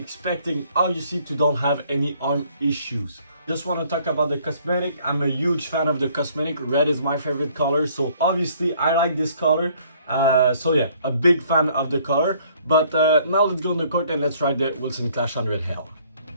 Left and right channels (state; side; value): inverted; both; correlation -0.61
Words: obviously to don't have any arm issues. Just want to talk about the cosmetic. I'm a huge fan of the cosmetic. Red is my favorite color, so obviously I like this color. So yeah, a big fan of the color. But now let's go on the court and let's try the Wilson Clash 100 Hell.